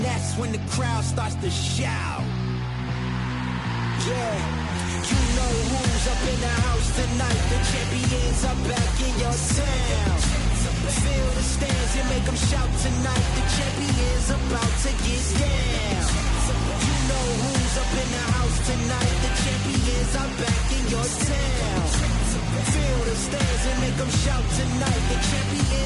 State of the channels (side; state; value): both; identical; correlation 1.00